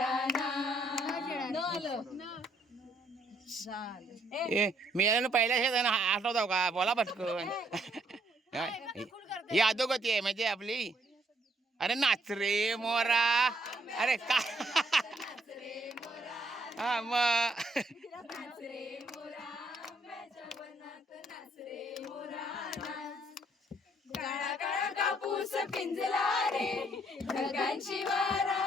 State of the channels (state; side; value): normal; both; correlation 0.69